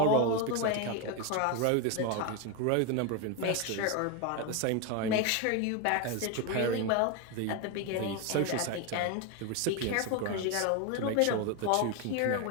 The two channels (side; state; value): both; different; correlation 0.02